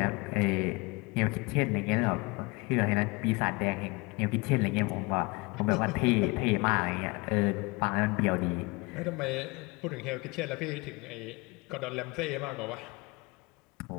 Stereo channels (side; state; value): right; quieter; 26.0 dB